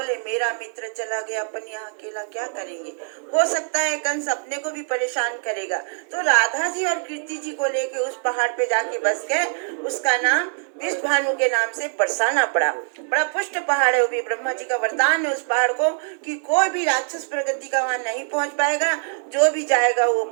मेरा मित्र चला गया, अपन यहाँ अकेला क्या करेंगे। हो सकता है कंस अपने को भी परेशान करेगा। तो राधा जी और कीर्ति जी को लेके उस पहाड़ पे जाके बस गए। उसका नाम विष भानु के नाम से बरसाना पड़ा। बड़ा पुष्ट पहाड़ है, वो भी ब्रह्मा जी का वरदान है उस पहाड़ को कि कोई भी राक्षस प्रगति का वहाँ नहीं पहुँच पाएगा। जो भी जाएगा वो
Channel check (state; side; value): silent; left; digital silence